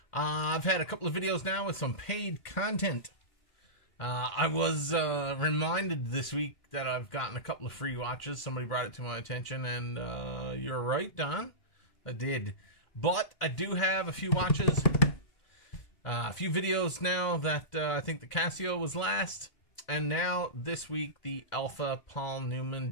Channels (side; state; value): right; late; 2.1 ms